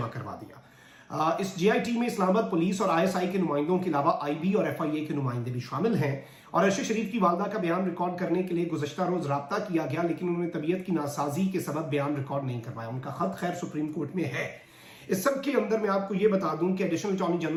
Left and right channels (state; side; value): identical; both; correlation 1.00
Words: करवा दिया। इस जीआईटी में इस्लामाबाद पुलिस और आईएसआई के नुमाइंदों के अलावा आईबी और एफआईए के नुमाइंदे भी शामिल हैं। और अरशद शरीफ की वालदा का बयान रिकॉर्ड करने के लिए गुज़श्ता रोज राब्ता किया गया, लेकिन उन्होंने तबीयत की नासाजी के सबब बयान रिकॉर्ड नहीं करवाया। उनका खत खैर सुप्रीम कोर्ट में है। इस सब के अंदर मैं आपको ये बता दूं कि एडिशनल अटॉर्नी